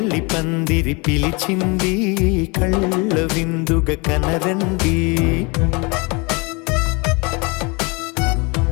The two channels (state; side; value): quieter; right; 28.7 dB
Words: పందిరి పిలిచింది కళ్ళ విందుగా కనరండి